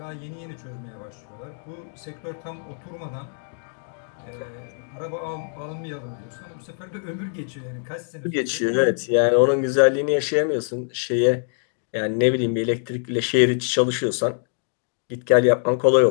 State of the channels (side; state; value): right; silent; 63 dB below the other